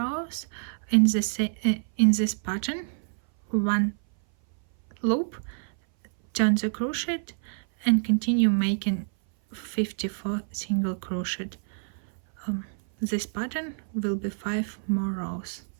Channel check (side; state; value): left; silent; 58 dB below the other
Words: in this pattern, 1 loop, turn the crochet and continue making 54 single crochet. This pattern will be 5 more rows,